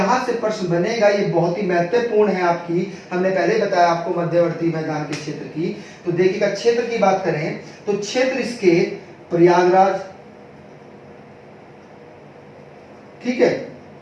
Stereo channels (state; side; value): identical; both; correlation 1.00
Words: से प्रश्न बनेगा, ये बहुत ही महत्वपूर्ण है आपकी। हमने पहले बताया आपको मध्यवर्ती मैदान के क्षेत्र की। तो देखिएगा, क्षेत्र की बात करें तो क्षेत्र इसके प्रयागराज, ठीक है,